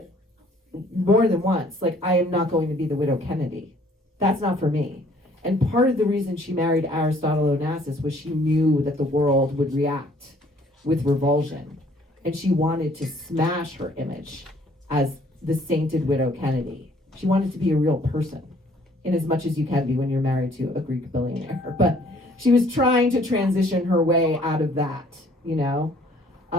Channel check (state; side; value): normal; both; correlation 0.60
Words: more than once. Like, I am not going to be the widow Kennedy. That's not for me. And part of the reason she married Aristotle Onassis was she knew that the world would react with revulsion. And she wanted to smash her image as the sainted widow Kennedy. She wanted to be a real person, in as much as you can be when you're married to a Greek billionaire. But she was trying to transition her way out of that, you know?